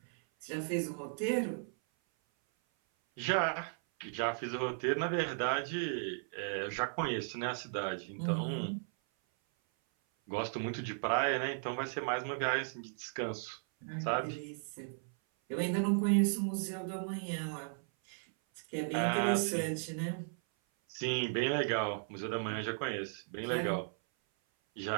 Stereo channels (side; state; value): left; silent; 54 dB below the other